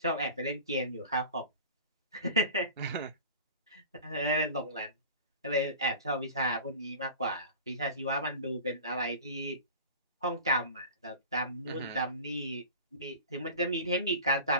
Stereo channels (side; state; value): both; inverted; correlation -0.36